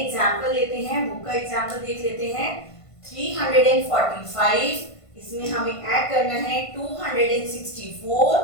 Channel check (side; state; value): right; late; 1.5 ms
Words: लेते हैं। बुक का एग्जांपल देख लेते हैं। 345 इसमें हमें ऐड करना है 264